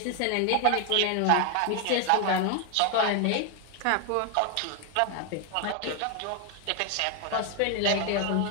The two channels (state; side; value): different; both; correlation 0.00